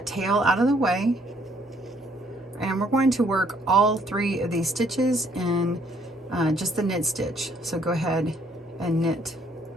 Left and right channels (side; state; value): both; normal; correlation 0.65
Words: tail out of the way, and we're going to work all 3 of these stitches in just the knit stitch. So go ahead and knit